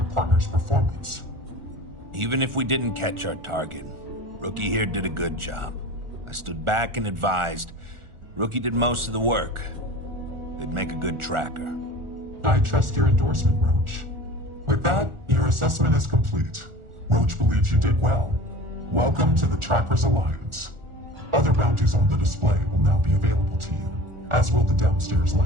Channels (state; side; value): late; left; 1.4 ms